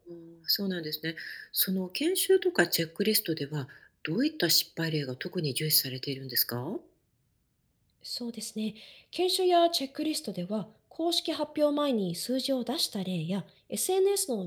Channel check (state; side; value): identical; both; correlation 1.00